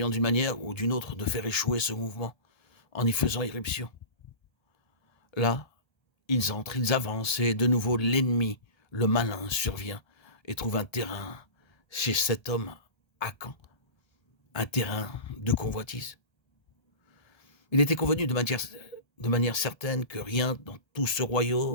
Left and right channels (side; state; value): right; late; 1.3 ms